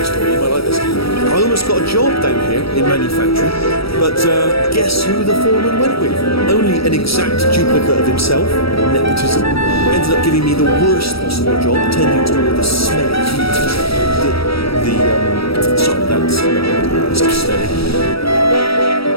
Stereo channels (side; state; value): right; late; 0.76 ms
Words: story. You might like this. I almost got a job down here in manufacturing, but guess who the foreman went with? Only an exact duplicate of himself. Nepotism. Ended up giving me the worst possible job, tending to all the smelly humans. Sorry, that's it's steady.